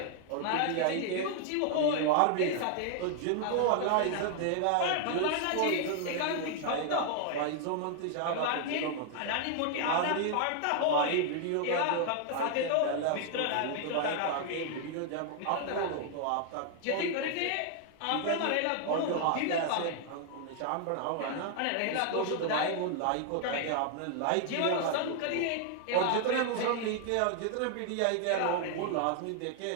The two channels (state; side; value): different; both; correlation 0.00